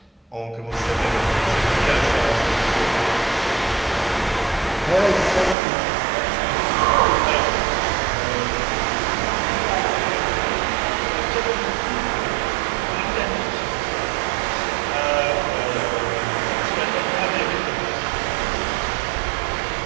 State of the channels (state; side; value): drops out; left; at 5.6 s